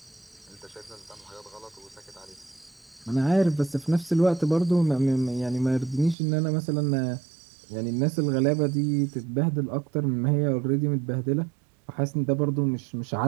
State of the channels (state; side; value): drops out; left; at 6.2 s